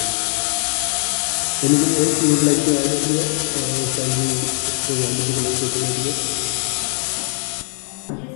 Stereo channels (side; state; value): right; quieter; 39.6 dB